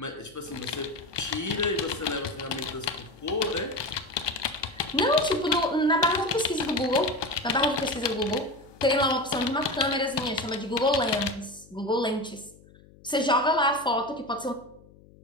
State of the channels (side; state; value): left; noise; hum, 25 dB below the sound